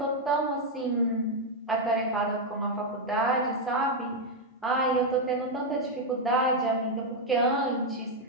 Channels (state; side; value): normal; both; correlation 0.01